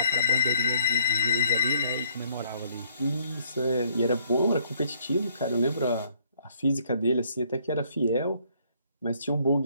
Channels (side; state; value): both; inverted; correlation -0.65